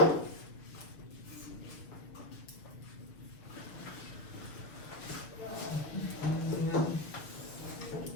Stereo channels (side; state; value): right; late; 6.6 ms